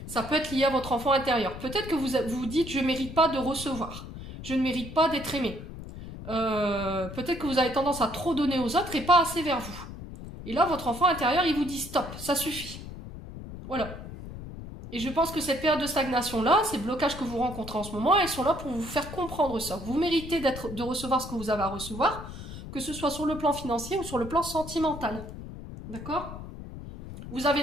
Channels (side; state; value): left; noise; rumble, 11 dB below the sound